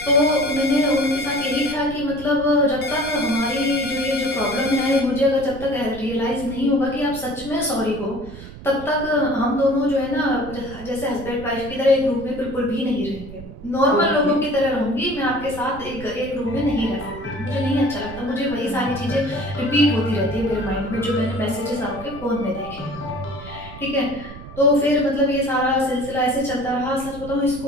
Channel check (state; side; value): noise; right; rumble, 14 dB below the sound